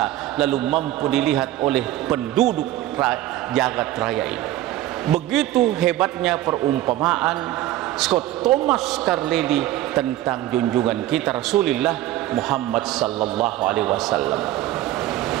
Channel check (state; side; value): quieter; left; 14.5 dB